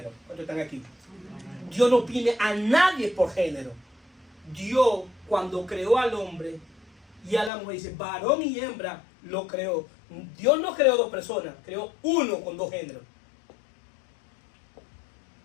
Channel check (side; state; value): right; drops out; at 7.5 s